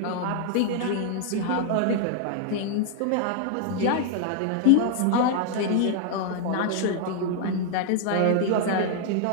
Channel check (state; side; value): different; both; correlation 0.00